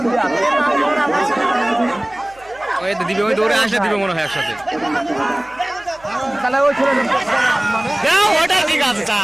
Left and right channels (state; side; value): noise; right; hum, 27 dB below the sound